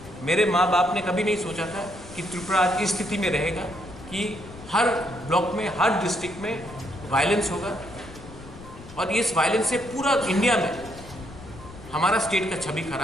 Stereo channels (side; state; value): left; noise; rumble, 17 dB below the sound